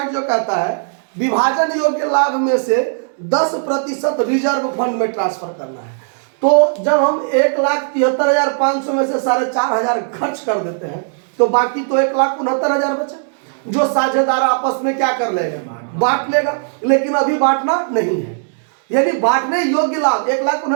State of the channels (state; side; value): silent; left; digital silence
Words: जो कहता है विभाजन योग्य लाभ में से 10% रिजर्व फंड में ट्रांसफर करना है। तो जब हम 1,73,500 में से 4,500 खर्च कर देते हैं तो बाकी तो 1,69,000 बचा, जो साझेदार आपस में क्या कर लेगा? बांट लेगा। लेकिन अभी बांटना नहीं है, यानी बांटने योग्य लाभ